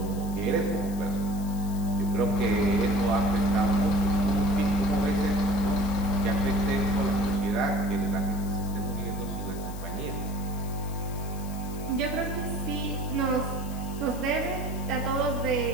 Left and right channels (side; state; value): left; noise; hiss, 17 dB below the sound